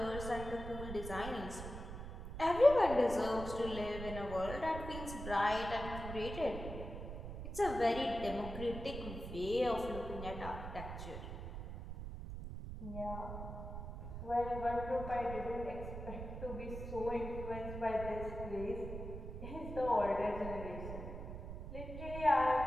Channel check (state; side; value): noise; right; rumble, 8 dB below the sound